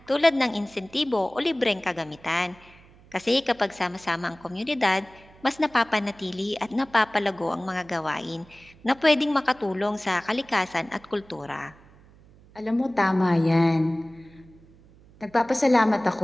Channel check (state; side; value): noise; right; hum, 26 dB below the sound